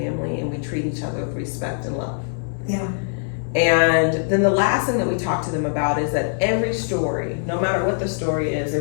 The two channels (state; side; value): silent; right; digital silence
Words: and we treat each other with respect and love. Yeah. And then the last thing that we talk to them about is that every story, no matter what the story is,